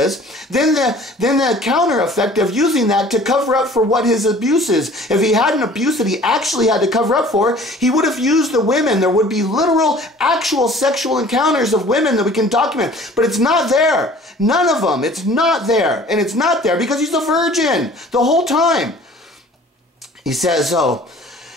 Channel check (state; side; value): normal; both; correlation 0.49